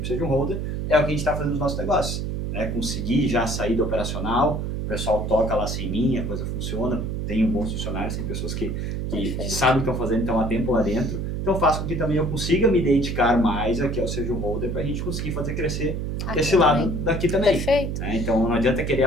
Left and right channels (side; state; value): right; noise; hum, 2 dB below the sound